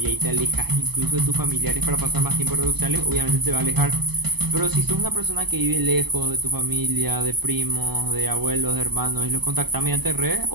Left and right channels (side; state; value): left; late; 0.98 ms